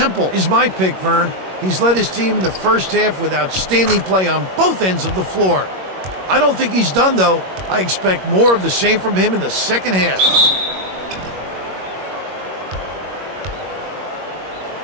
is my pick, Vern. He's led his team in the first half with outstanding play on both ends of the floor. I don't think he's done, though. I expect more of the same from him in the second half.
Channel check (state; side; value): late; left; 21 ms